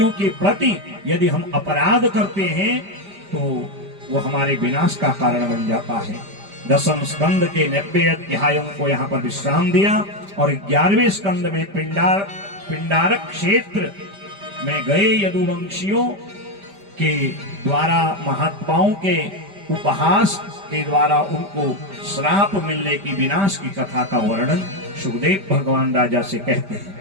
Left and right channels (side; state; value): left; late; 5.1 ms